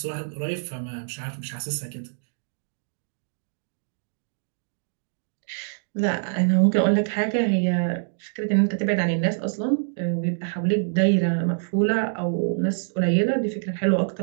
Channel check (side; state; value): left; silent; digital silence